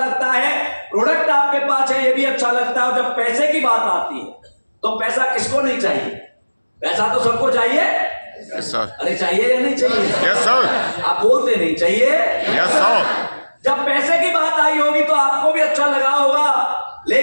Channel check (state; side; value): inverted; both; correlation -1.00